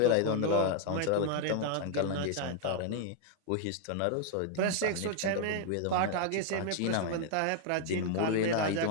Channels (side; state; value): both; different; correlation 0.00